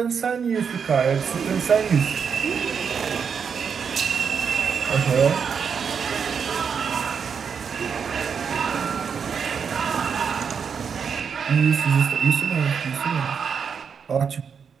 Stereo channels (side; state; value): left; quieter; 6.6 dB